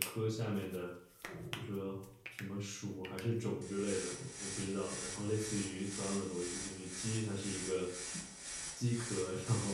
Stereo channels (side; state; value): both; identical; correlation 1.00